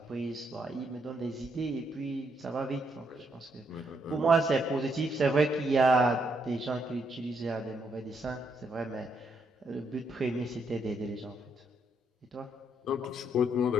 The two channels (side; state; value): both; normal; correlation 0.75